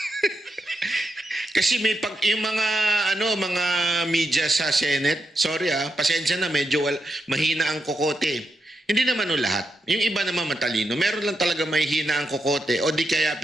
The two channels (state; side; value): normal; both; correlation 0.85